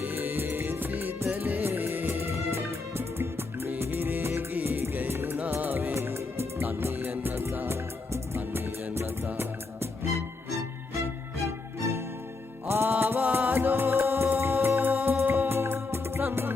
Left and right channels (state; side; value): quieter; right; 3.7 dB